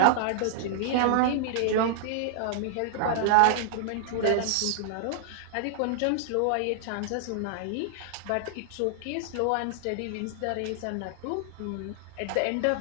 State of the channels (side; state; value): both; different; correlation 0.00